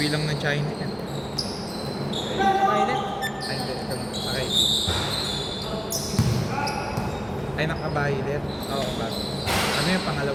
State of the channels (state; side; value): identical; both; correlation 1.00